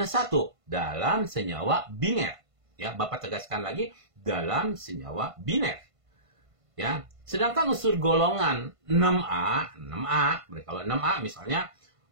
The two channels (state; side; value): late; left; 1.5 ms